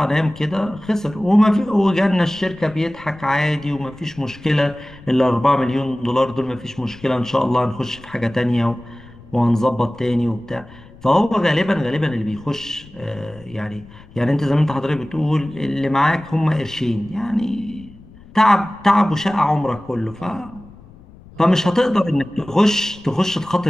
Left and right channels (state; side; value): noise; left; rumble, 22 dB below the sound